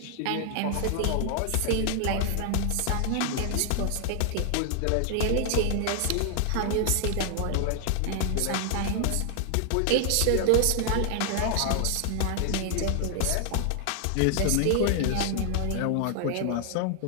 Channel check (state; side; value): different; both; correlation 0.00